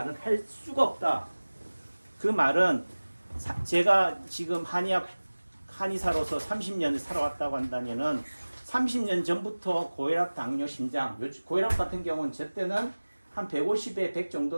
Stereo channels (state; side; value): inverted; both; correlation -1.00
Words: 할 수가 없다. 그 말은 제가 지금 한의사로서 30년을 살아왔다고 한다면은 30년 전부터 고혈압, 당뇨, 심장, 고혈압 같은 경우는 저 때는 한 150에 100